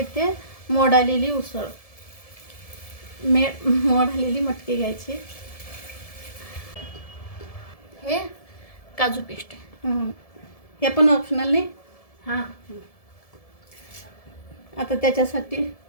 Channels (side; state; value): right; late; 1.7 ms